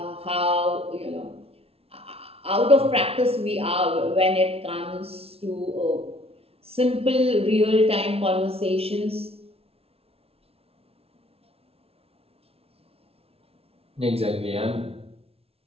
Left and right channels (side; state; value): left; late; 0.29 ms